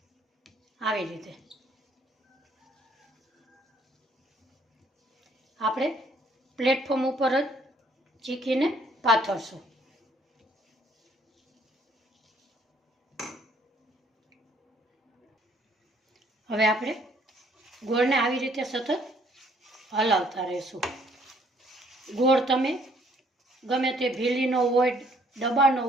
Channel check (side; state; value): both; normal; correlation 0.63